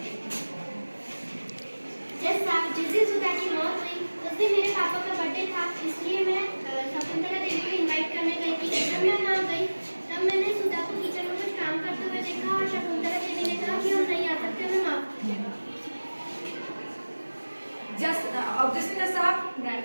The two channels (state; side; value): inverted; both; correlation -1.00